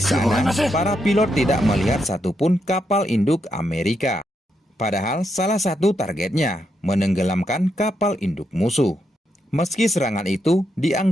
sana para pilot tidak melihat satupun kapal induk Amerika. Padahal salah satu targetnya menenggelamkan kapal induk musuh. Meski serangan itu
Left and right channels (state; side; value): normal; both; correlation 0.81